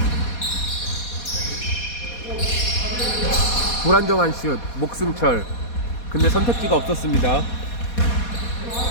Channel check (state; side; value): late; right; 4.2 ms